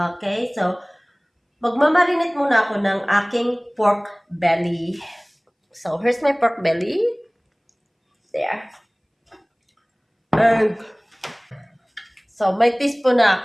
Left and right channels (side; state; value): both; identical; correlation 1.00